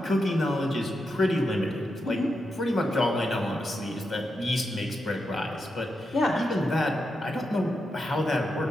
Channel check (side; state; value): both; normal; correlation 0.86